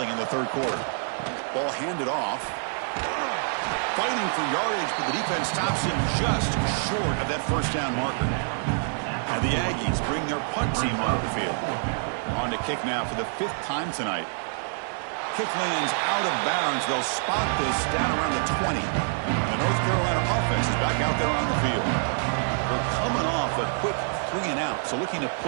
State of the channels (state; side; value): silent; left; 61 dB below the other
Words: in the 3rd quarter. Ball handed off. Fighting for yardage, but the defense stops him just short of that first down marker. And the Aggies bring their punt team onto the field. On to kick now for the 5th time tonight. Kick lands out of bounds. They'll spot this down around the 20. The North Carolina offense is back out there on the field. They're coming off a quick 3 and out, so looking to